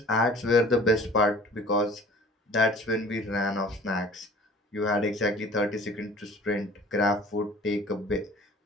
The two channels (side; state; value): both; normal; correlation 0.47